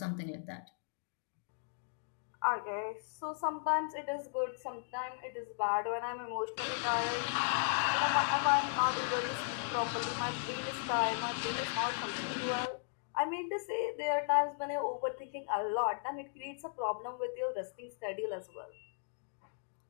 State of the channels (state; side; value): silent; right; digital silence